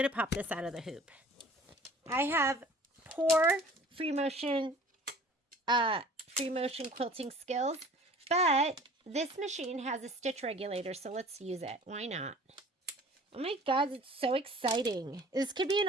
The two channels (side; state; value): both; normal; correlation 0.48